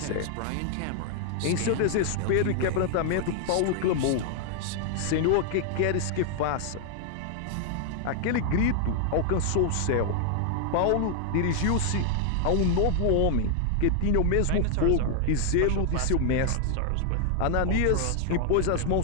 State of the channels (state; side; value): different; both; correlation 0.00